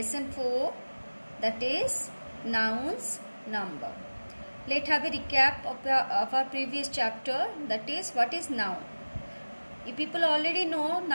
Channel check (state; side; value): inverted; both; correlation -1.00